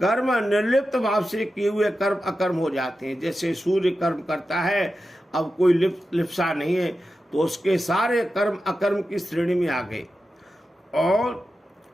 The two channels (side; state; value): both; normal; correlation 0.92